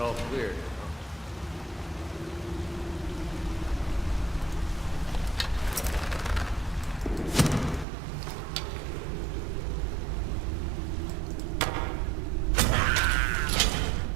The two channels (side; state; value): left; drops out; at 7.9 s